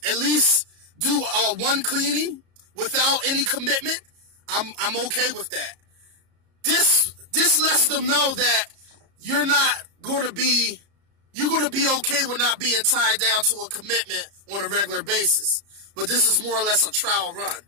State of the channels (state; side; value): late; left; 33 ms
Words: at least do one cleaning without any commitment, I'm okay with that. This lets them know that you're going to be okay with not being tied down to a commitment on a regular basis. But this is more or less a trial run.